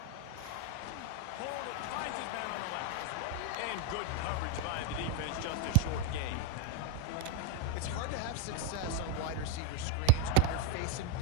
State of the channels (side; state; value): both; different; correlation 0.01